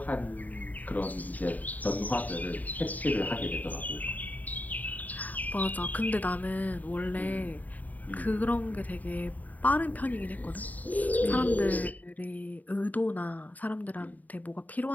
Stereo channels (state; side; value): late; right; 0.078 ms